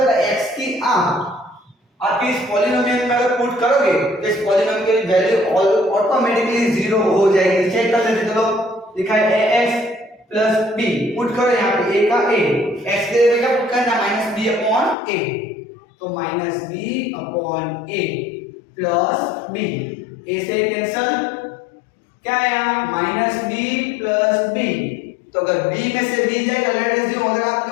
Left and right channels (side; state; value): right; drops out; at 15.0 s